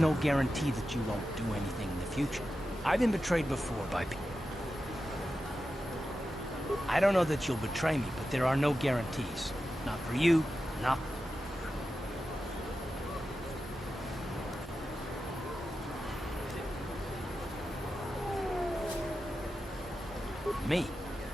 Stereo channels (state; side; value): normal; both; correlation 0.91